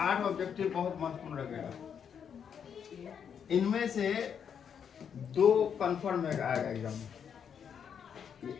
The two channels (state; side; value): quieter; right; 7.7 dB